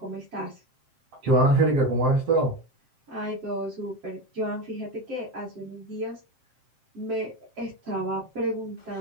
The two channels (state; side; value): late; left; 7.6 ms